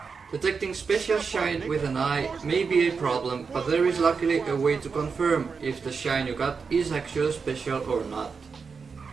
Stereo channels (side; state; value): left; quieter; 5.3 dB